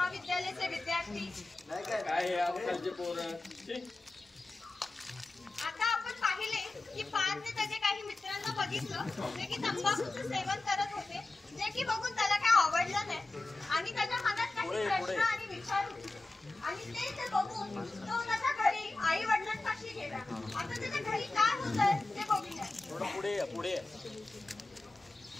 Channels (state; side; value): quieter; right; 3.1 dB